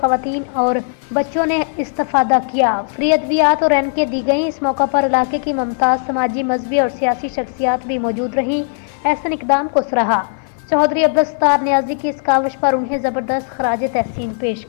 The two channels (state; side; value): silent; right; 57 dB below the other